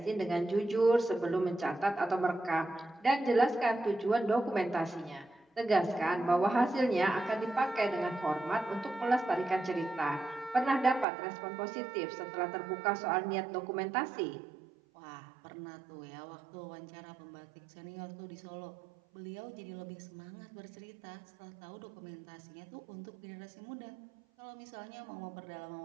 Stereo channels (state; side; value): drops out; left; at 11.1 s